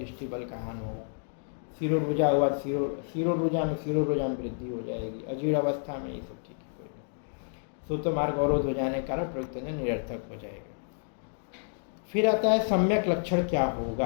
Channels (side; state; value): right; silent; digital silence